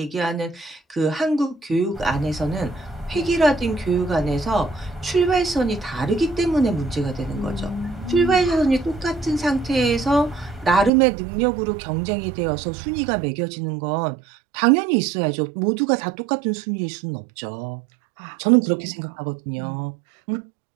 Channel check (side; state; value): left; drops out; at 10.9 s